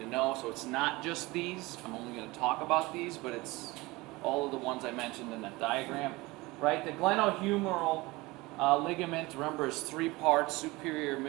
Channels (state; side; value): quieter; left; 21.9 dB